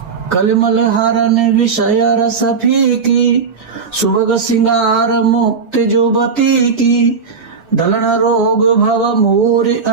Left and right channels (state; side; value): quieter; left; 5.4 dB